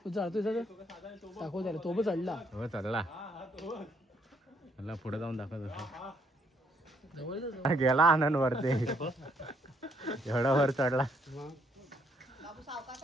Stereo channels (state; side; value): normal; both; correlation 0.70